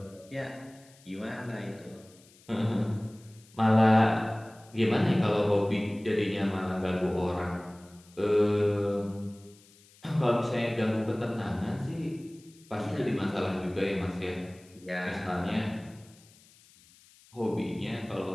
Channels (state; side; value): noise; left; hiss, 27 dB below the sound